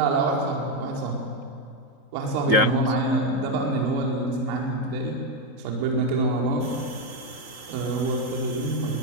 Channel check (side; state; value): left; late; 3.8 ms